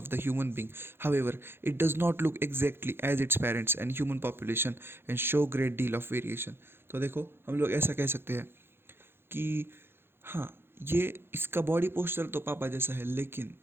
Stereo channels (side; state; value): left; late; 0.11 ms